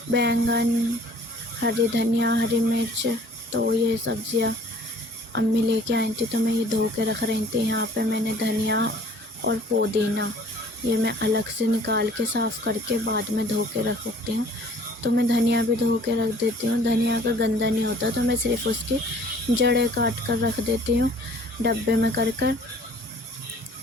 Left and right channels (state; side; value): normal; both; correlation 0.53